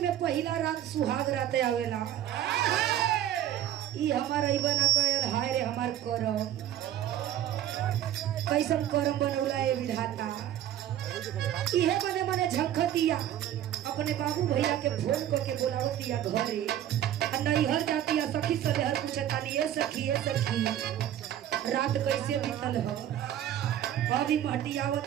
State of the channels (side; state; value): left; quieter; 11.5 dB